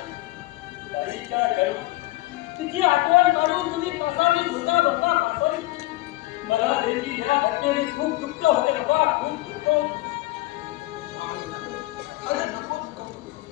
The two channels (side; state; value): right; quieter; 19.1 dB